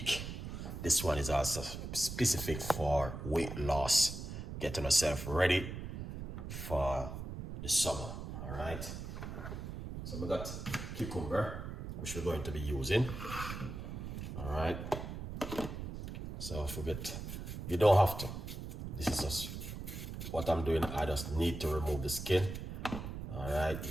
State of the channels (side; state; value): right; noise; rumble, 7 dB below the sound